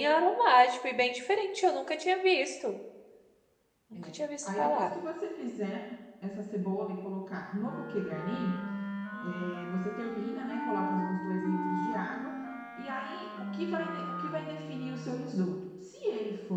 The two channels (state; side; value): identical; both; correlation 1.00